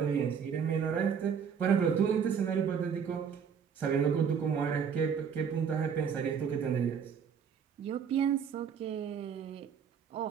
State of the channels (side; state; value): left; quieter; 7.1 dB